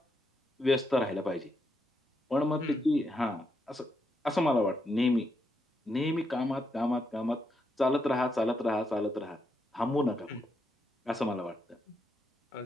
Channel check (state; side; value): normal; both; correlation 0.80